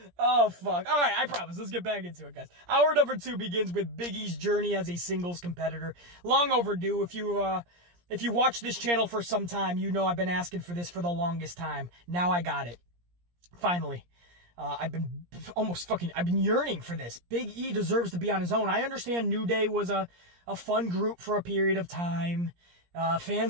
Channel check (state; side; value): late; left; 17 ms